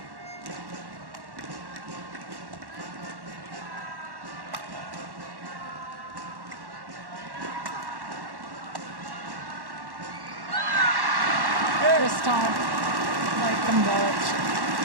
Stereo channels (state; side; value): late; left; 1.1 ms